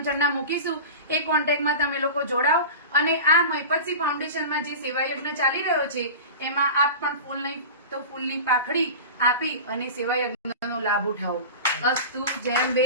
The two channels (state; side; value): inverted; both; correlation -0.31